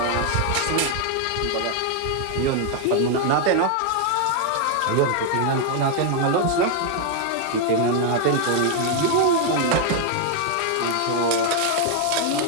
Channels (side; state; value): both; different; correlation 0.00